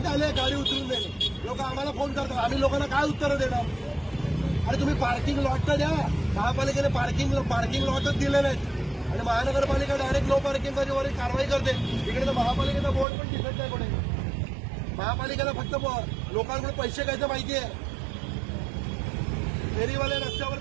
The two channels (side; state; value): left; drops out; at 13.1 s